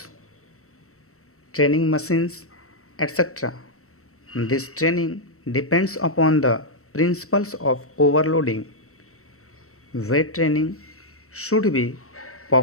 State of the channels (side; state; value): right; late; 0.63 ms